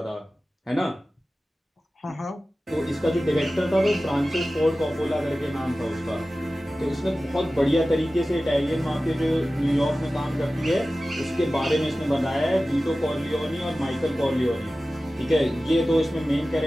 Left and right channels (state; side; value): normal; both; correlation 0.96